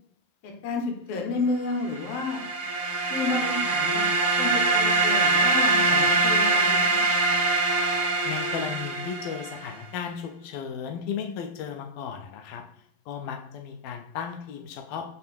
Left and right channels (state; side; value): late; right; 11 ms